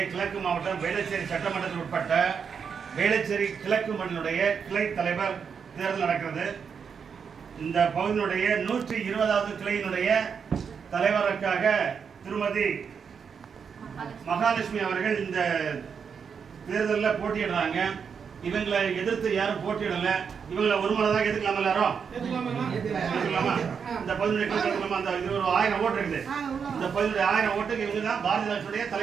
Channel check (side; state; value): left; quieter; 6.5 dB